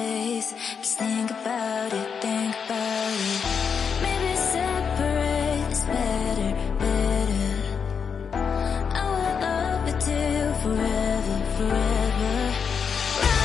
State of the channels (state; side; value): quieter; right; 6.4 dB